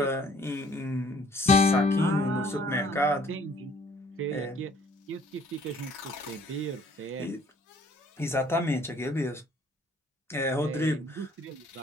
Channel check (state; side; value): normal; both; correlation 0.59